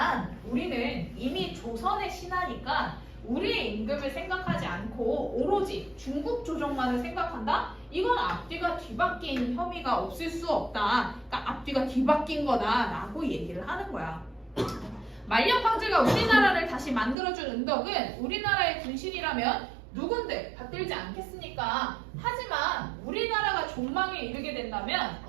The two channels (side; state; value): left; drops out; at 17.2 s